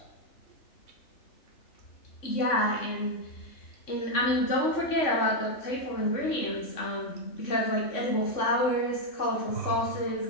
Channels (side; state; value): right; late; 3.6 ms